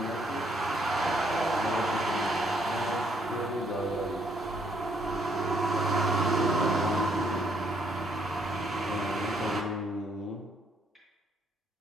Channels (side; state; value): both; normal; correlation 0.70